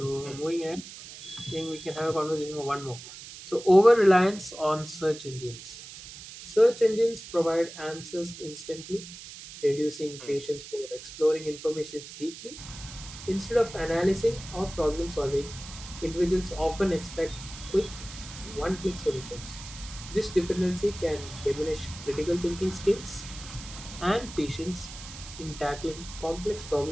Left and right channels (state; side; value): noise; right; hiss, 14 dB below the sound